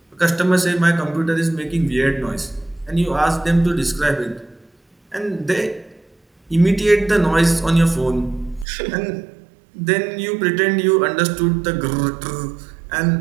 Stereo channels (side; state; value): left; drops out; at 8.7 s